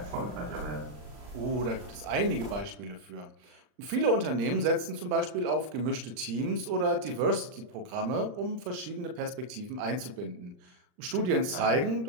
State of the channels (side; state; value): left; late; 39 ms